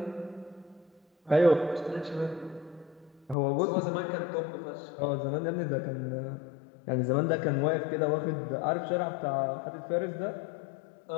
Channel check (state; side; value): drops out; right; at 3.4 s